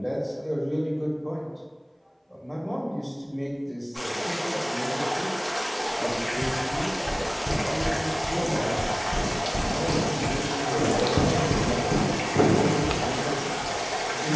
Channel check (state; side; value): identical; both; correlation 1.00